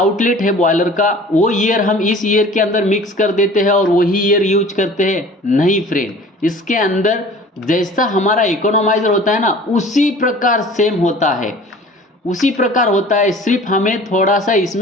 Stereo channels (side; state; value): both; normal; correlation 0.45